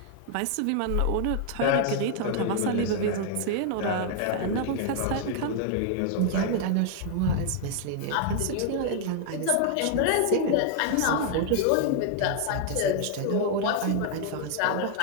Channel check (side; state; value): both; different; correlation 0.00